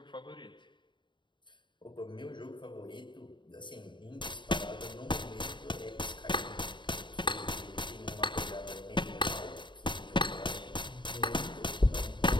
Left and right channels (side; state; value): right; late; 0.23 ms